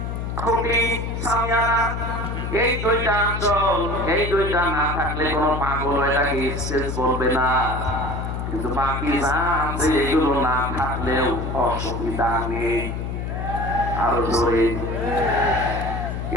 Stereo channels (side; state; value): left; noise; hum, 4 dB below the sound